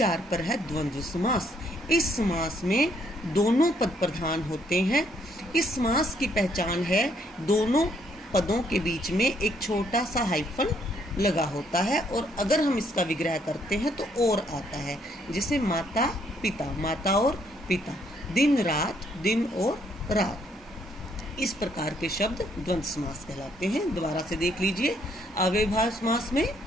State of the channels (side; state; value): both; normal; correlation 0.70